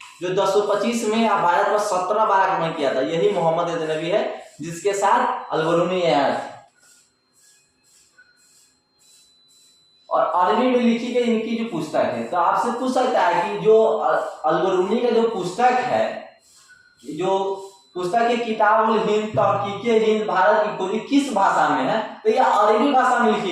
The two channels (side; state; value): both; identical; correlation 1.00